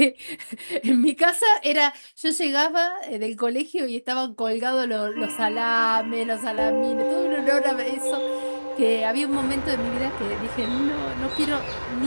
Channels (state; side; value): inverted; both; correlation -1.00